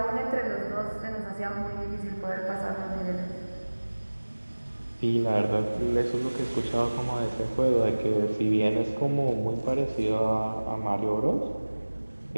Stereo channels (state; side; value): inverted; both; correlation -1.00